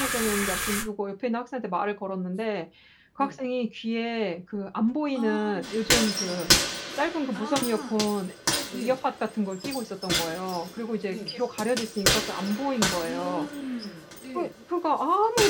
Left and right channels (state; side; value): identical; both; correlation 1.00